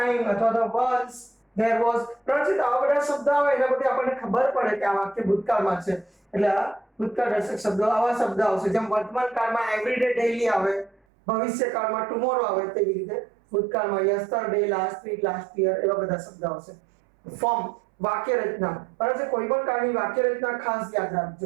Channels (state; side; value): drops out; left; at 11.0 s